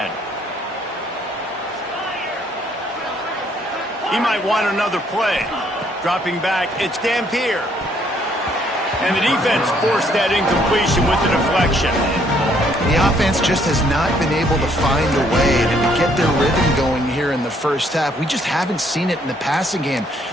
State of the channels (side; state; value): both; normal; correlation 0.67